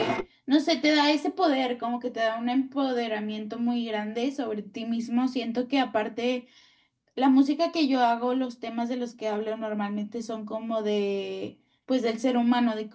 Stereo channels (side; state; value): both; identical; correlation 1.00